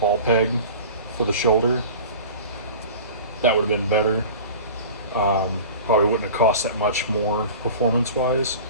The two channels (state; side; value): inverted; both; correlation -0.38